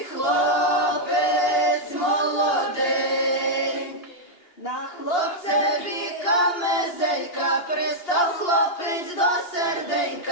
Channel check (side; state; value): right; late; 2.8 ms